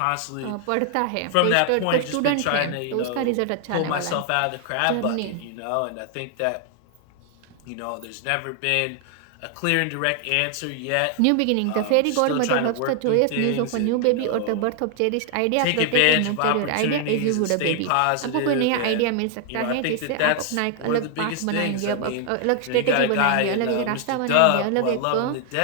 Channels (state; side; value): different; both; correlation 0.00